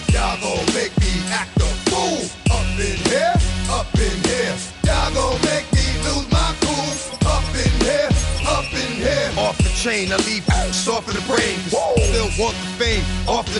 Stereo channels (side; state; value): both; identical; correlation 1.00